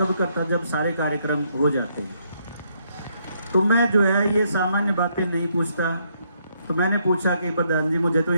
करता जब सारे कार्यक्रम हो जाते हैं। तो मैं जो है ये सामान्य बातें नहीं पूछता। तो मैंने पूछा कि प्रधान जी मुझे तो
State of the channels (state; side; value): inverted; both; correlation -0.73